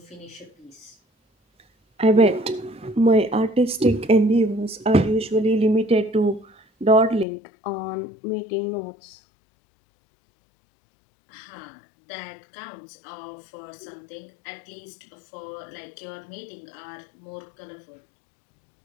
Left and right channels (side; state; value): right; drops out; at 7.2 s